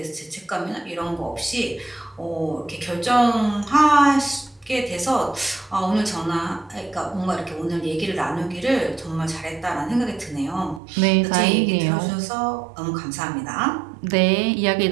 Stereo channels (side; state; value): left; drops out; at 10.8 s